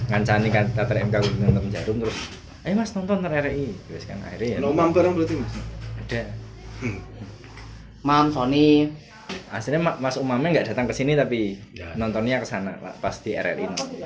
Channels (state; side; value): identical; both; correlation 1.00